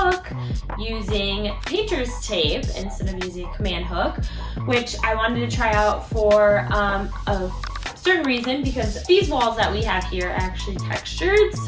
using painter's tape instead of using a command hook, which I wanted to try out for a certain reason, because these walls that we have here are actually textured,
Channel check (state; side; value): identical; both; correlation 1.00